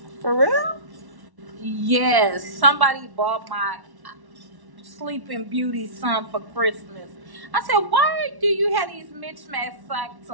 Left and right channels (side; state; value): left; late; 1.1 ms